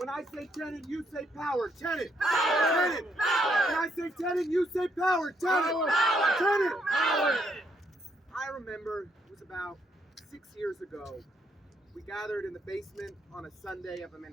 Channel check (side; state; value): both; normal; correlation 0.73